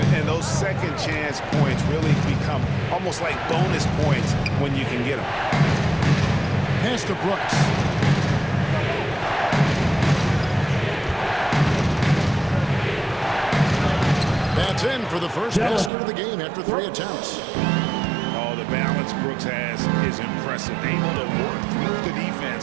And those second chance points really become almost like bonus points when you can get them. Pass to Brooks. That's in for the first basket of the game after 3 attempts. Oh, the balance Brooks has is impressive. Able to work through the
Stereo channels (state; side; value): drops out; left; at 15.9 s